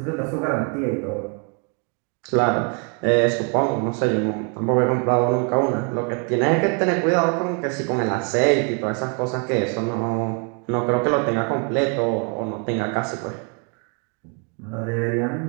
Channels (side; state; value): left; quieter; 38.2 dB